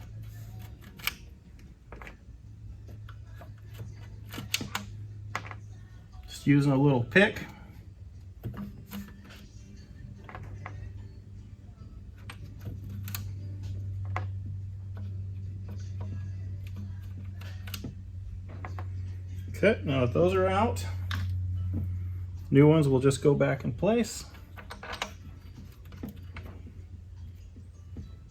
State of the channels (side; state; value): both; identical; correlation 1.00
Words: Just using a little pick. Okay, now that those are out, new ones will just go back in place.